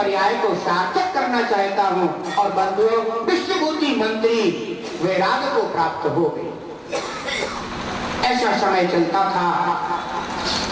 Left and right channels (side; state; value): both; identical; correlation 1.00